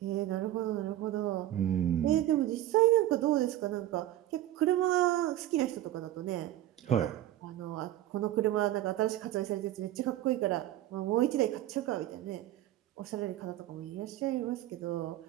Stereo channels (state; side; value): quieter; left; 13.7 dB